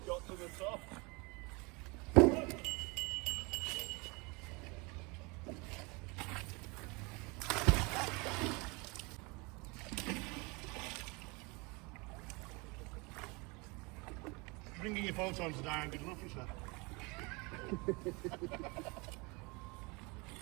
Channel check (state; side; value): quieter; left; 27.9 dB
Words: got to the top. Bringing your photons down, good enough, you said.